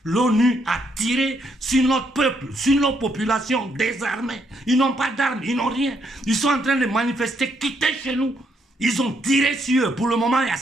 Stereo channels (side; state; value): both; normal; correlation 0.74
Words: L'ONU a tiré sur notre peuple, sur nos populations désarmées. Ils n'ont pas d'armes, ils n'ont rien. Ils sont en train de manifester, quitter chez nous. Ils ont tiré sur eux. Pour le moment, il y a